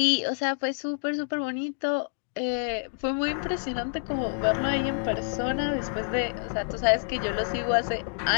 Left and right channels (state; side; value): silent; right; digital silence